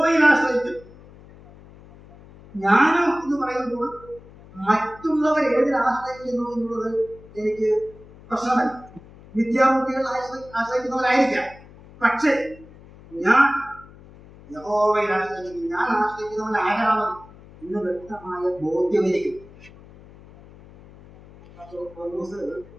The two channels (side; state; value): left; noise; hum, 21 dB below the sound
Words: ആശ്രയിക്കുന്നു. ജ്ഞാനം എന്ന് പറയുമ്പോൾ മറ്റുള്ളവർ ഏതിൽ ആശ്രയിക്കുന്നു എന്നുള്ളത് എനിക്ക് പ്രശ്നമല്ല. വിദ്യാർത്ഥികൾ ആശ്രയിക്കുന്നവരായിരിക്കാം. പക്ഷേ ഞാൻ യഹോവയിൽ ആശ്രയിക്കുന്നു. ഞാൻ ആശ്രയിക്കുന്നവൻ ആരാണ് എന്ന് വ്യക്തമായ ബോധ്യം എനിക്ക്.